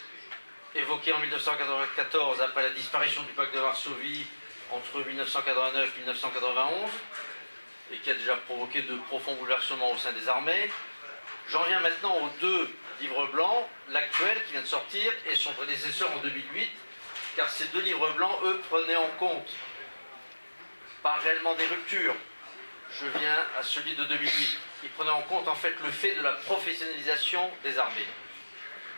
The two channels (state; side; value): inverted; both; correlation -1.00